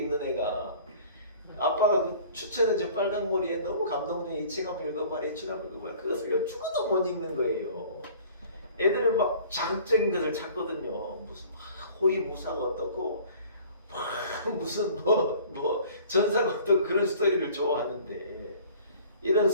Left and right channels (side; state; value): both; inverted; correlation -0.49